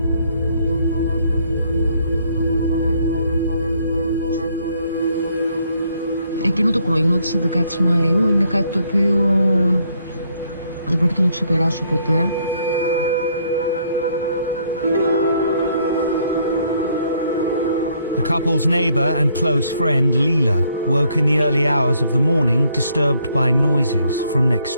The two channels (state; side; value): inverted; both; correlation -0.68